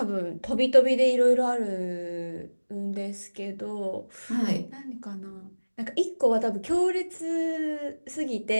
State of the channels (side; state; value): both; inverted; correlation -1.00